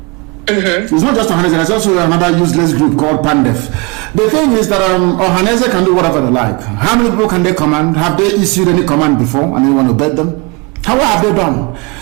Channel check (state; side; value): quieter; left; 27.8 dB